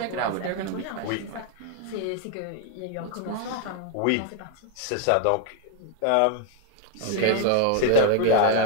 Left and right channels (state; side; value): different; both; correlation 0.00